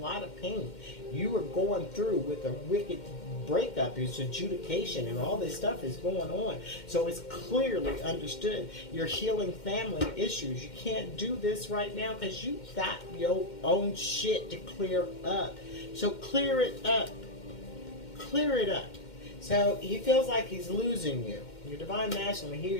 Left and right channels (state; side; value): late; right; 2.1 ms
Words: of pain. You are going through with a wicked breakup, it's adjudication, and all this stuff is going on. So it's clearly understood. You're healing family issues. You can't do this right now because you got your own shit to clear up. So clear it up. Clear it up. So he feels like he's losing you. Your Divine Masculine, he or